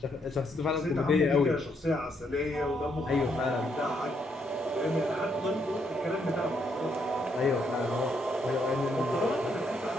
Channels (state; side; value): normal; both; correlation 0.75